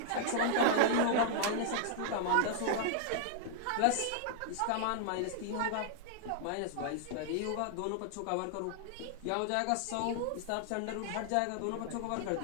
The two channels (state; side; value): different; both; correlation -0.01